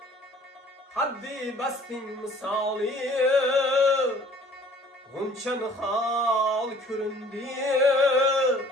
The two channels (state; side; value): normal; both; correlation 0.53